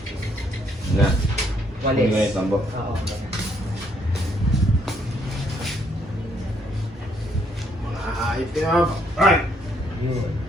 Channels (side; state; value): both; normal; correlation 0.70